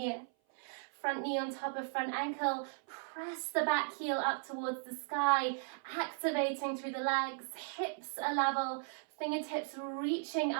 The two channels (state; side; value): silent; left; 53 dB below the other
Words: Front knee on top of front ankle, press the back heel up towards the sky, activating through the legs, hips are level, fingertips reaching